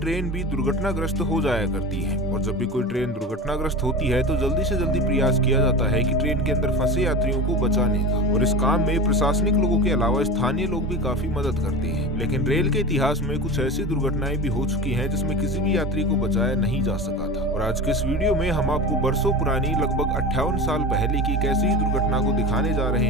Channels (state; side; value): normal; both; correlation 0.29